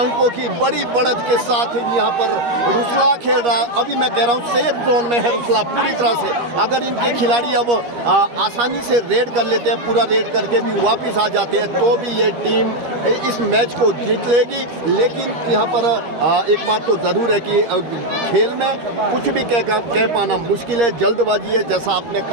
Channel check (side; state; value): left; late; 13 ms